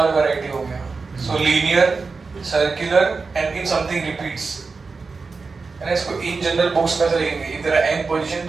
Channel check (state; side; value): quieter; left; 4.4 dB